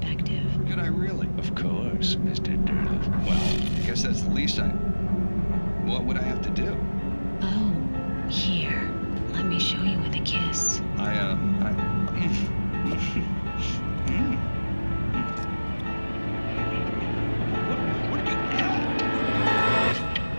Could I really? Of course, Mr. Derleth. Well, I guess that's the least I... What would I have to do? Oh, here. Let me show you with a kiss. What did you add?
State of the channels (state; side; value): inverted; both; correlation -1.00